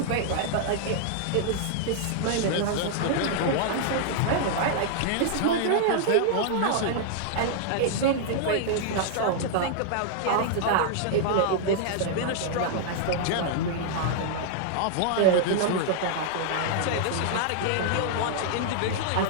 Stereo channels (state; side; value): different; both; correlation -0.01